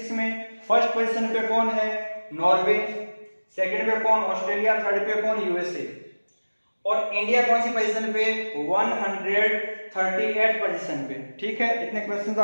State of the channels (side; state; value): both; inverted; correlation -1.00